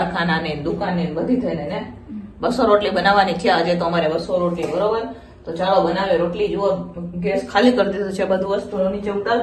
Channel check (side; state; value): both; identical; correlation 1.00